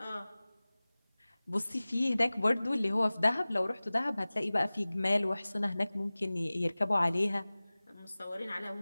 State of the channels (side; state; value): both; inverted; correlation -0.99